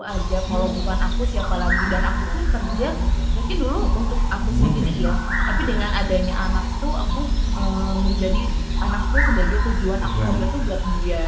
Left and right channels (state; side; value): identical; both; correlation 1.00